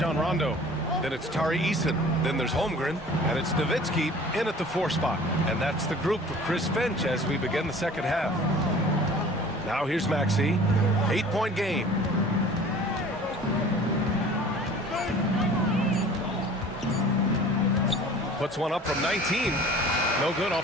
Rondo. Then it's Tari Eason. Then there's Holmgren. And it's Nowitzki in at the 4 spot. And that's the group for Chris Finch as we begin the second half. Now here's Maxey. 8-point game. Puts one up from 19. No good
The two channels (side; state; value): both; normal; correlation 0.46